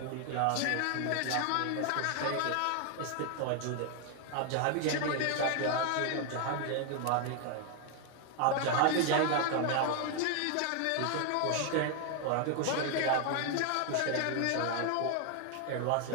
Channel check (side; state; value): both; different; correlation 0.00